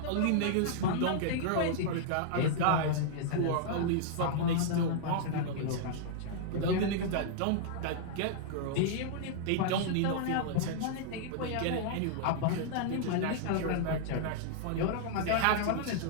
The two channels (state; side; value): different; both; correlation -0.01